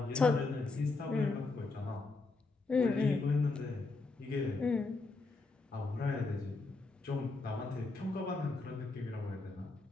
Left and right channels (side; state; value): right; quieter; 3.6 dB